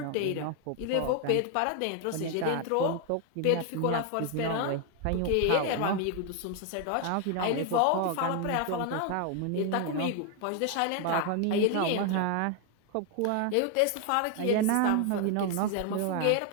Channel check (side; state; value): both; different; correlation 0.01